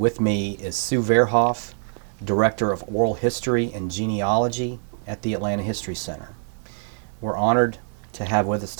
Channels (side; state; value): left; silent; digital silence